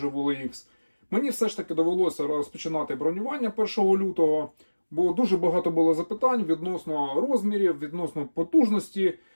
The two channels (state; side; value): inverted; both; correlation -1.00